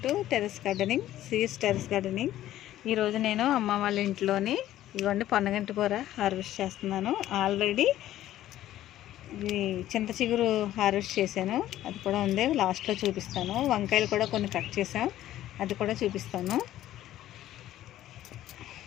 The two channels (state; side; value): quieter; right; 13.4 dB